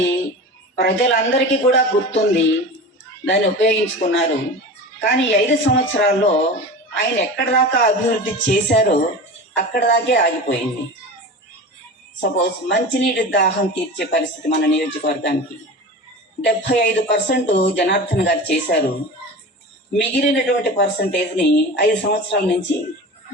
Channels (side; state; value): both; normal; correlation 0.32